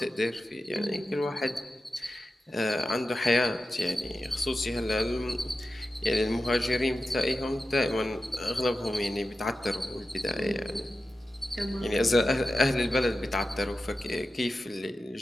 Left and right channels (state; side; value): normal; both; correlation 0.92